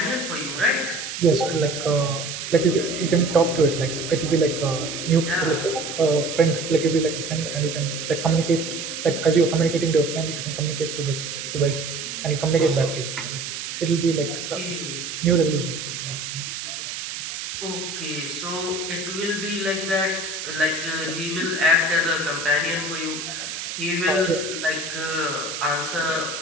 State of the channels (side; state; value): right; noise; hiss, 6 dB below the sound